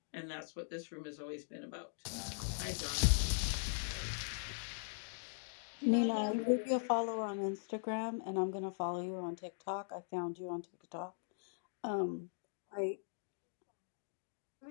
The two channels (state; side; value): silent; right; digital silence